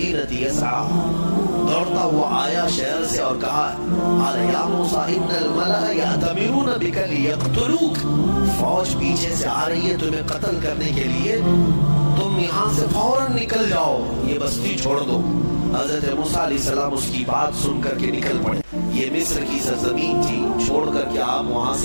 يسعى، دوڑتا ہوا آیا شہر سے اور کہا قال یا موسیٰ ان الملأ یأتمرون بک لیقتلوک، فوج پیچھے سے آ رہی ہے تمہیں قتل کرنے کے لیے، تم یہاں سے فوراً نکل جاؤ، یہ بستی چھوڑ دو۔ حضرت موسیٰ علیہ السلام اس کی بات سن کر کے نکل پڑے۔ یہ مصر کی سرزمین تھی، چھوڑ کر کے آپ وہاں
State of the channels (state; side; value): inverted; both; correlation -1.00